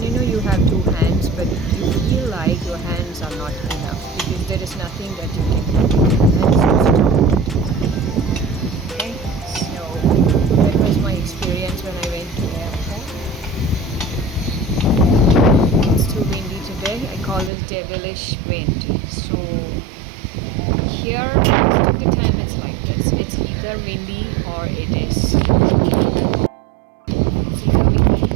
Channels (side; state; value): left; drops out; at 17.5 s